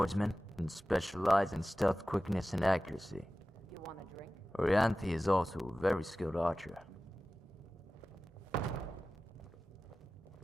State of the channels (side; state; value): both; normal; correlation 0.96